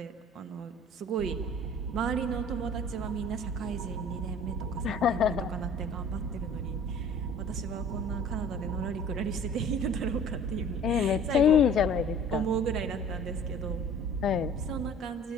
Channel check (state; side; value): normal; both; correlation 0.48